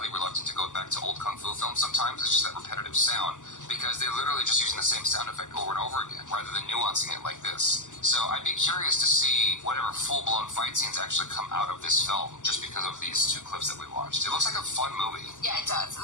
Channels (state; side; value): late; right; 0.86 ms